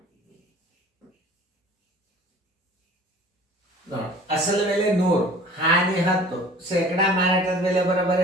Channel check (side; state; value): both; normal; correlation 0.47